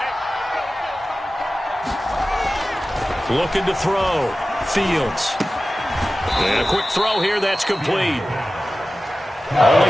Looking to throw. Fields. And a quick throw here, that's complete.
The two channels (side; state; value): both; normal; correlation 0.95